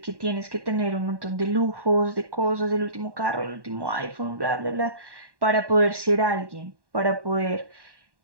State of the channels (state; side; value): late; left; 1.1 ms